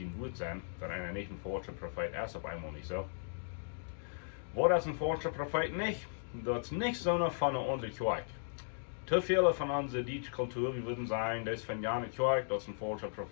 Wort sein, dass einer nicht ein falscher Prophet ist, auf einmal nicht so. Wo das ein falscher Prophet nicht, das ist nicht so eine von unserer Kirche. Zu viele von unserer deutschen Kultur, wir würden sagen, das ist von einer Kirche, das ist ein falscher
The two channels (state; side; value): silent; right; digital silence